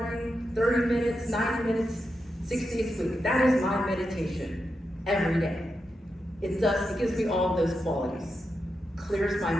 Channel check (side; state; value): both; normal; correlation 0.87